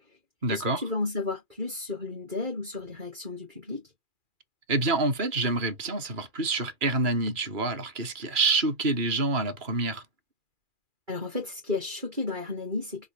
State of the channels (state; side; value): late; left; 2.4 ms